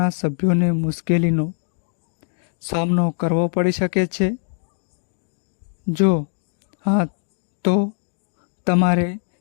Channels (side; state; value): right; silent; digital silence